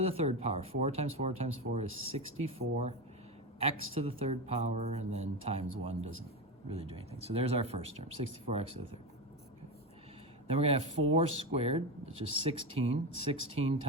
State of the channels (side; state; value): both; normal; correlation 0.17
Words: the third power. 4 times 4 times 4 is 64. X to the third power, and then times 1 doesn't really do anything. So there's our first term, 64x to the third. Okay. Then we're going to have 4 squared, which is 16. 16